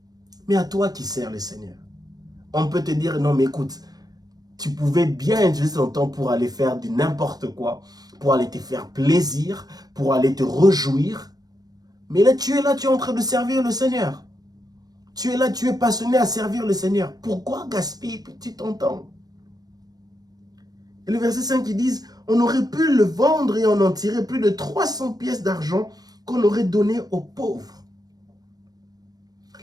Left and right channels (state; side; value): late; left; 0.19 ms